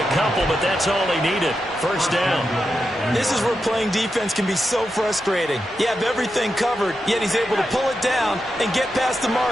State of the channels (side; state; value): both; normal; correlation 0.88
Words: couple, but that's all he needed. 1st down. This is where playing defense can be so frustrating. You have everything covered, yet he's able to pull it down and get past the